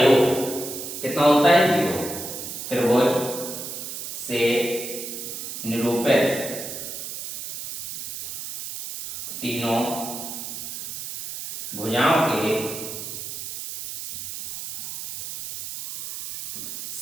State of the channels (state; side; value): noise; right; hiss, 8 dB below the sound